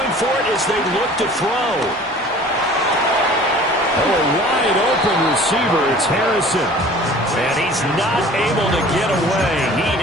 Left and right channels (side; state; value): both; normal; correlation 0.47